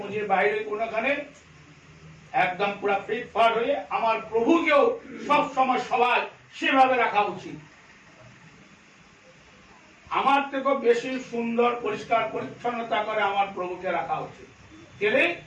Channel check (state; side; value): identical; both; correlation 1.00